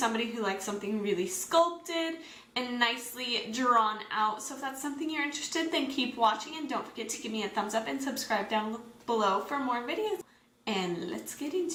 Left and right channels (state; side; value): identical; both; correlation 1.00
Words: who likes something really sculpted and nicely drawn out. So if that's something you're interested in, then keep watching and don't forget to give me a thumbs up and subscribe down below for more videos. And let's get